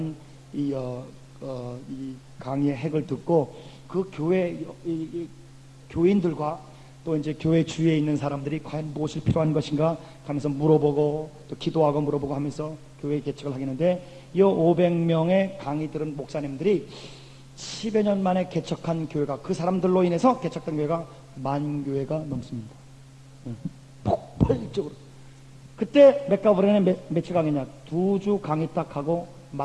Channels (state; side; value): identical; both; correlation 1.00